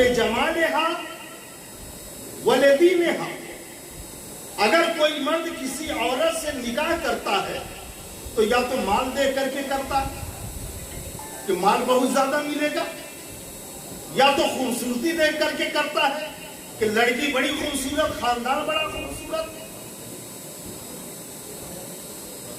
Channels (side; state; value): both; identical; correlation 1.00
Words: ولدینہا۔ اگر کوئی مرد کسی عورت سے نکاح کرتا ہے تو یا تو مال دے کر کے کرتا ہے کہ مال بہت زیادہ ملے گا، یا تو خوبصورتی دیکھ کر کے کرتا ہے کہ لڑکی بڑی خوبصورت، خاندان بڑا خوبصورت،